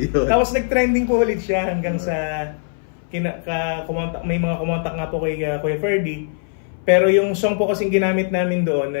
Tapos nag-trending po ulit siya hanggang sa may mga kumontak nga po kay Kuya Ferdy. Pero yung song po kasing ginamit namin doon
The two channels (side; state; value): right; silent; 60 dB below the other